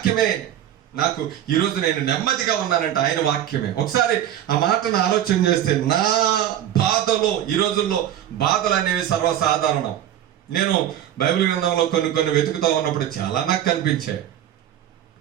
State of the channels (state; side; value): quieter; left; 11.4 dB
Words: నాకు ఈరోజు నేను నెమ్మదిగా ఉన్నానంటే ఆయన వాక్యమే. ఒకసారి ఆ మాటను ఆలోచన చేస్తే, నా బాధలో, ఈ రోజుల్లో బాధలు అనేవి సర్వసాధారణం. నేను బైబిల్ గ్రంథంలో కొన్ని వెతుకుతూ ఉన్నప్పుడు చాలా నాకు కనిపించాయి.